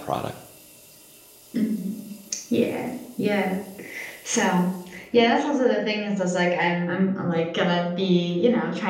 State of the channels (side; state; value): both; identical; correlation 1.00